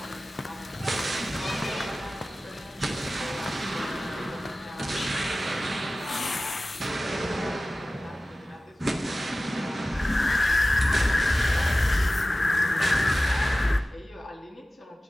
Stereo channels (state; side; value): normal; both; correlation 0.97